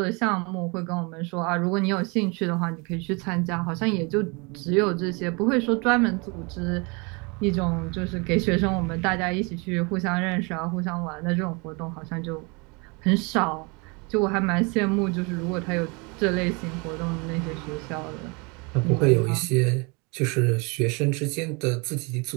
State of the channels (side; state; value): left; quieter; 29.9 dB